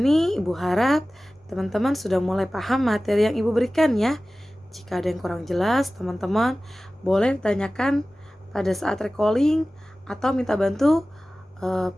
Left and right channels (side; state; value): both; normal; correlation 0.96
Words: Ibu harap teman-teman sudah mulai paham materi yang Ibu berikan ya. Jika ada yang kurang jelas, teman-teman boleh ditanyakan pada saat recalling atau minta bantu